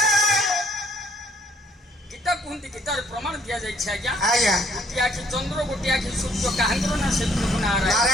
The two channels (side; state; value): both; normal; correlation 0.63